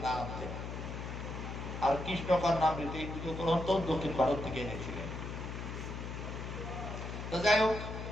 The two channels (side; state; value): left; noise; hum, 6 dB below the sound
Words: না আনতেন। আর কৃষ্ণকর্ণামৃত এই দুটো গ্রন্থ দক্ষিণ ভারত থেকে এনেছিলেন। তো যাই হোক,